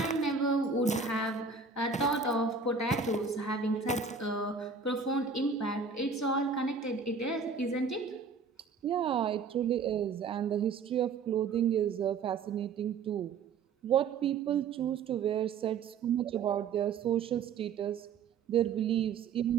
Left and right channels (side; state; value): left; quieter; 5.3 dB